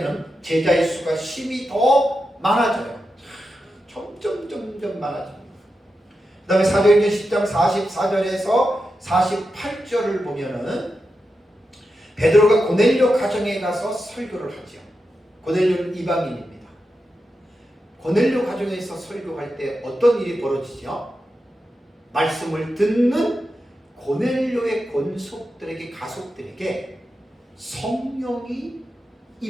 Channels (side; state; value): both; normal; correlation 0.89